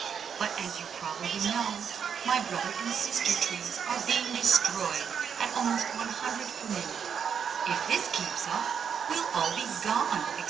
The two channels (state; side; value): quieter; left; 7.4 dB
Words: But as you probably know, my brother and sister trees are being destroyed at almost 100 per minute. If this keeps up, we'll all be gone,